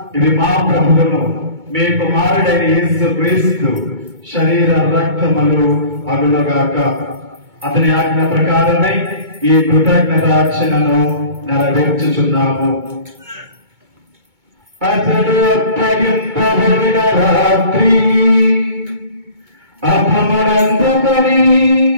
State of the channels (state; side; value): late; left; 2.2 ms